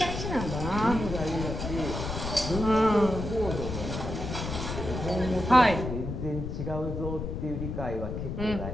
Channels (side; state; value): left; noise; rumble, 5 dB below the sound